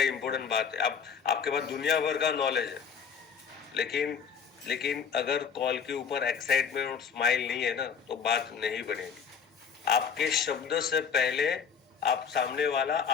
इम्पोर्टेंट बात है। अब आपके पास दुनिया भर का नॉलेज है, लेकिन लेकिन अगर कॉल के ऊपर एक्साइटमेंट और स्माइल नहीं है ना, तो बात नहीं बनेगी। आपके शब्द से पहले आप सामने वाला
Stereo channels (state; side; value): quieter; right; 6.8 dB